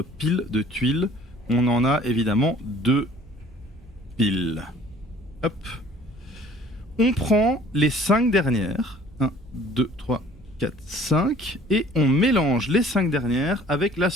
pile de tuiles. On en a évidemment 2 piles. Hop. On prend les 5 dernières. 1, 2, 3, 4, 5. Et on mélange les 5 dernières avec la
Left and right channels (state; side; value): normal; both; correlation 0.52